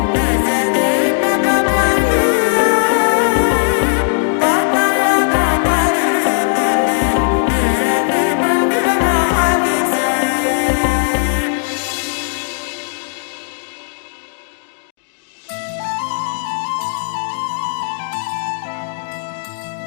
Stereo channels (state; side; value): silent; right; digital silence